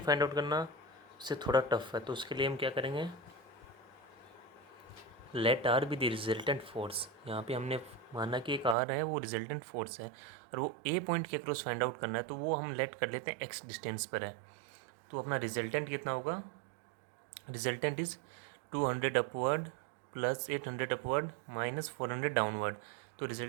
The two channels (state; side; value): drops out; left; at 8.8 s